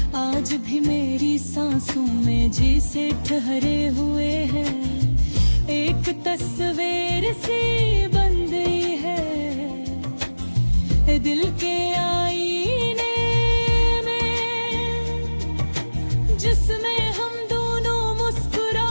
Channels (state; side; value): inverted; both; correlation -1.00